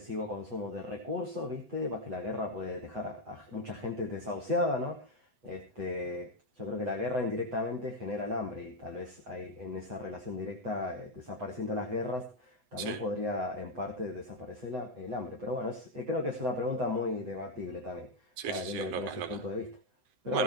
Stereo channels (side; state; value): left; late; 7.9 ms